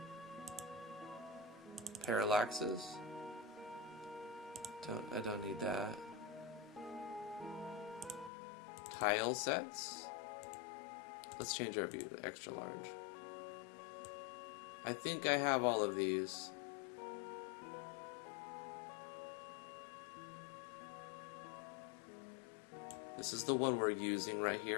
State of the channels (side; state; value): right; drops out; at 8.3 s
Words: Parallaxes. I don't need that. Tile sets. Let's change our view to extra large. I think I have all of these. This is the one we're using right